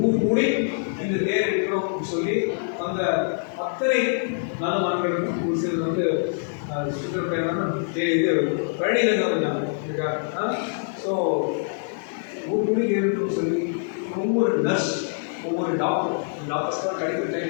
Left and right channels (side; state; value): right; silent; digital silence